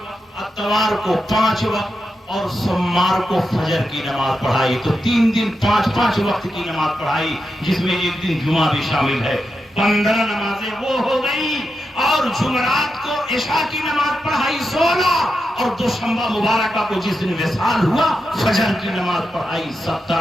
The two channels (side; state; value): both; normal; correlation 0.87